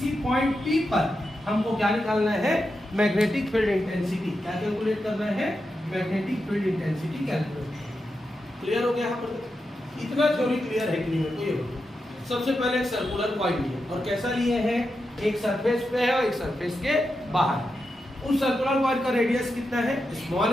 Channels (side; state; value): both; normal; correlation 0.88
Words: पॉइंट P पर हमको क्या निकालना है, मैग्नेटिक फील्ड इंटेंसिटी। क्या कैलकुलेट करना है, magnetic field intensity calculate. Clear हो गया यहाँ पर? इतना थ्योरी क्लियर है कि नहीं मेरे को ये बताओ। सबसे पहले एक सर्कुलर कॉइल लिए, और कैसा लिए हैं, एक सरफेस पे है और एक सरफेस के बाहर। उस सर्कुलर कॉइल का रेडियस कितना है,